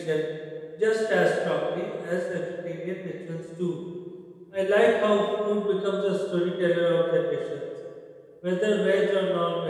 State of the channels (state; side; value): identical; both; correlation 1.00